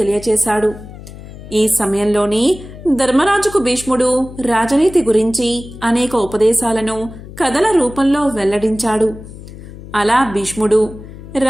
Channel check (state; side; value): noise; left; hum, 15 dB below the sound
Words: ఈ సమయంలోనే ధర్మరాజుకు భీష్ముడు రాజనీతి గురించి అనేక ఉపదేశాలను కథల రూపంలో వెల్లడించాడు. అలా భీష్ముడు